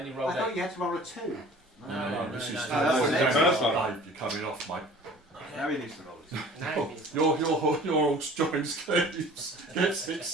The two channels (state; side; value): normal; both; correlation 0.46